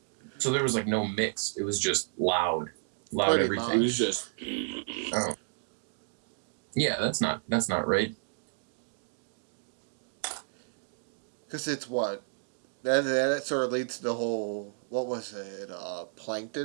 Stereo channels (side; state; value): left; silent; digital silence